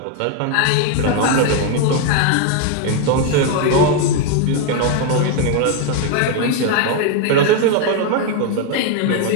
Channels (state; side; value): different; both; correlation 0.01